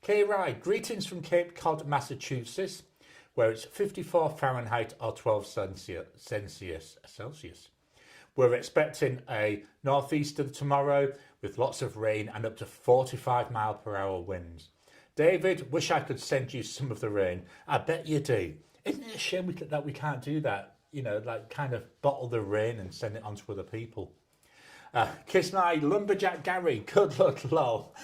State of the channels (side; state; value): both; identical; correlation 1.00